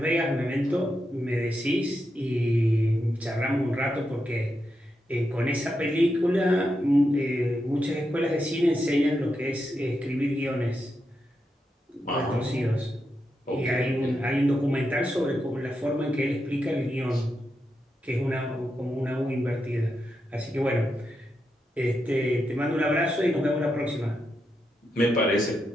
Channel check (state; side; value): normal; both; correlation 0.85